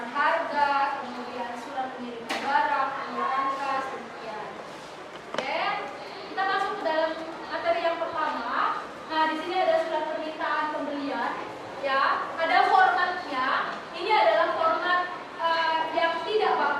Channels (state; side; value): identical; both; correlation 1.00